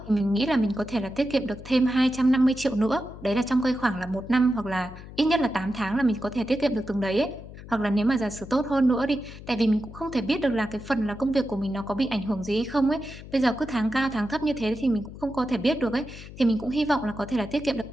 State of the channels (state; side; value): noise; left; hum, 15 dB below the sound